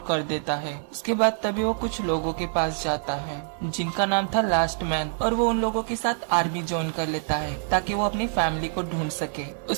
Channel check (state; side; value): silent; left; 55 dB below the other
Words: कर देता है। उसके बाद तभी वो कुछ लोगों के पास जाता है जिनका नाम था लास्ट मैन, और वो उन लोगों के साथ आर्मी ज्वाइन कर लेता है ताकि वो अपनी फैमिली को ढूंढ सके।